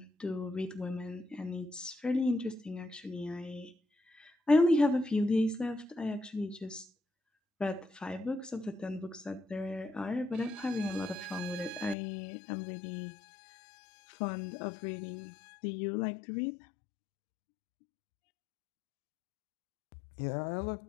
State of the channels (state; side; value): drops out; right; at 12.0 s